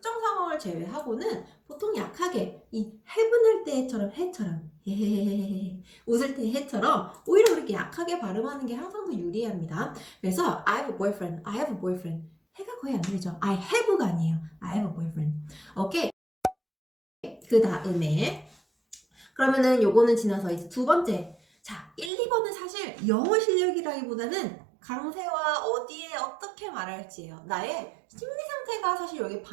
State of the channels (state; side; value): drops out; left; at 22.1 s